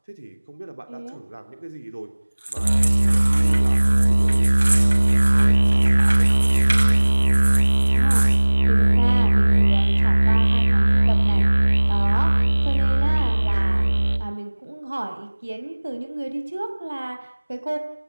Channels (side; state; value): both; inverted; correlation -1.00